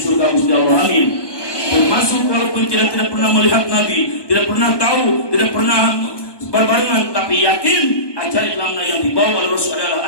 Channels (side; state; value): right; late; 1.2 ms